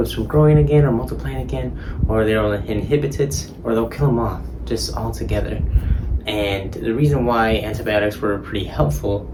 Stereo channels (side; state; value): both; identical; correlation 1.00